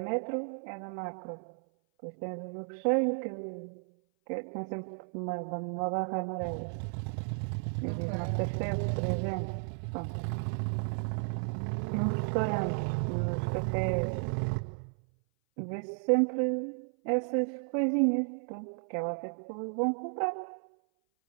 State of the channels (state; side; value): silent; left; 55 dB below the other